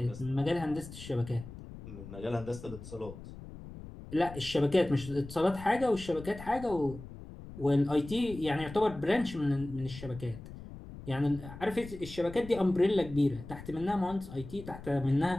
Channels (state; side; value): noise; left; rumble, 14 dB below the sound